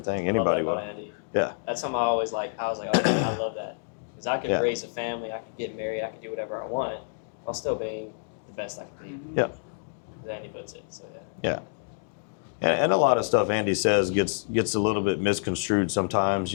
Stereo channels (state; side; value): silent; right; digital silence